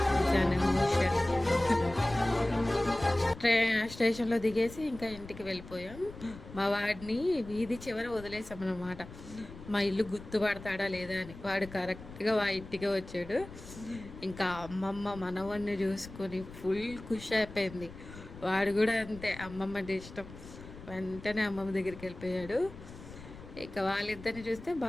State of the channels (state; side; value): noise; left; rumble, 15 dB below the sound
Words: జనమోషన్. స్టేషన్లో దిగేసి ఇంకా ఇంటికి వెళ్ళిపోయాం. మా వాడిని వీధి చివర వదిలేసామన్నమాట. మా ఇల్లు గుర్తుపడతాడా లేదా అని. వాడు కరెక్ట్గా మా ఇంటికే వచ్చాడు. ఇంకా అమ్మమ్మ మనవన్ని చూసుకొని ఫుల్ ఖుషి అయిపోయింది. వాడు కూడా అంతే, అమ్మమ్మ అంటే ఇష్టం. వెంటనే అమ్మమ్మ దగ్గరికి వెళ్ళిపోయాడు. ఇక వాళ్ళిద్దరిని చూస్తే